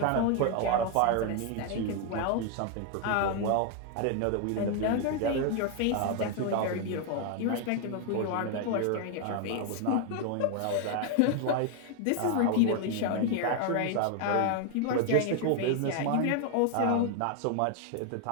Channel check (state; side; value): different; both; correlation 0.01